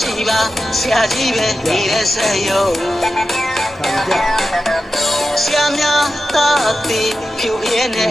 ှိပါဆရာကြီးပဲနေတဲ့ဆက်ရုံဆရာများသာတိဖြူရဲနဲ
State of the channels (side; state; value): both; normal; correlation 0.91